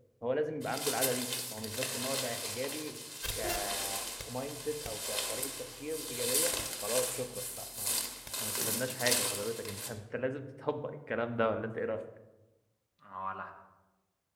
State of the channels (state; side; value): identical; both; correlation 1.00